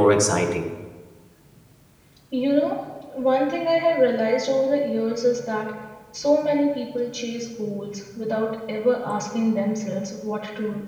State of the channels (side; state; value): both; identical; correlation 1.00